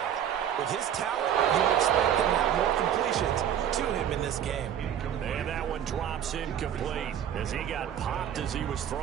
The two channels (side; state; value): left; quieter; 9.6 dB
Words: with his talent, you would expect them to have more completions to him in this game. And that one drops incomplete as he got popped as he was